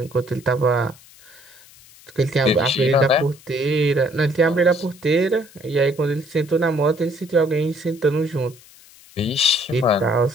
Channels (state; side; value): noise; left; hiss, 24 dB below the sound